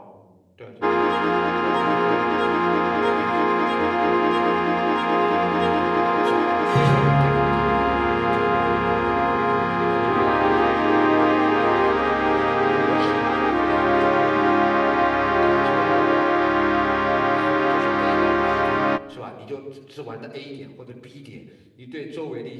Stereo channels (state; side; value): identical; both; correlation 1.00